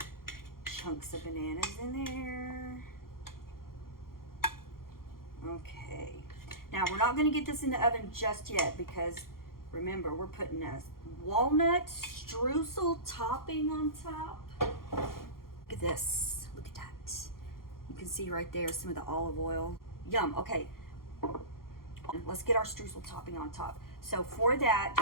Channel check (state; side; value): late; right; 0.92 ms